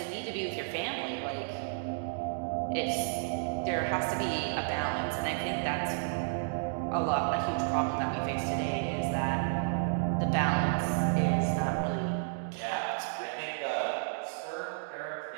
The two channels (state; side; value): silent; left; digital silence